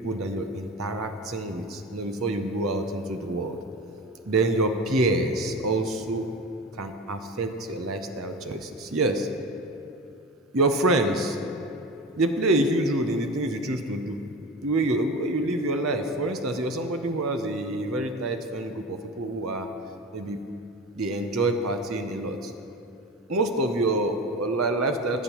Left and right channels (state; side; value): normal; both; correlation 0.30